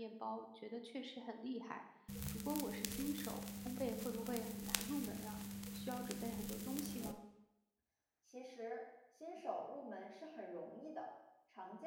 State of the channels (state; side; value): identical; both; correlation 1.00